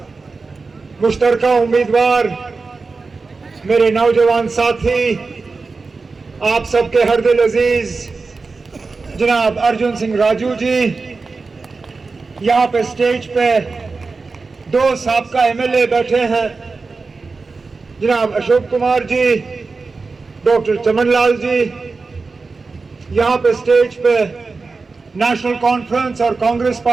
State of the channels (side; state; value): left; quieter; 4.2 dB